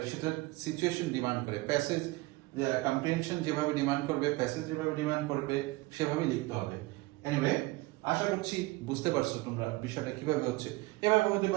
সেটা সিচুয়েশন ডিমান্ড করে, প্যাসেজ কম্প্রিহেনশন যেভাবে ডিমান্ড করবে, প্যাসেজ যেভাবে ডিমান্ড করবে সেভাবেই লিখতে হবে। এনিওয়ে, আশা করছি বুঝতে পারছো তোমরা বিষয়টা কিভাবে হচ্ছে। এভাবে হতে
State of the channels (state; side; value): quieter; left; 21.2 dB